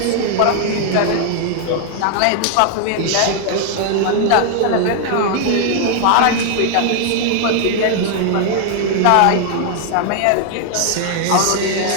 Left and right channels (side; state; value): both; different; correlation 0.00